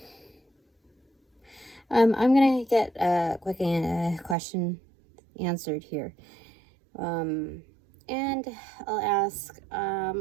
gonna get a quick question answered here, and I'll ask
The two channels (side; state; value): left; drops out; at 4.4 s